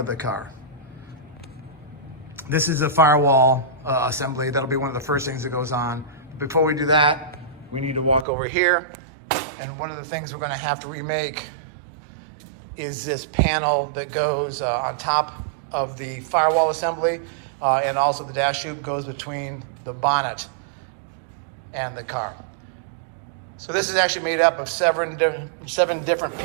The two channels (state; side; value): drops out; left; at 8.2 s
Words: the car. This is a firewall assembly. That'll be one of the first things that goes on. Before we do that, we need to walk over here. And one of the things we're going to have to remake is this panel that goes on top of the firewall assembly, and also the dash tube goes between the bonnet and the car. So this is actually made up of seven different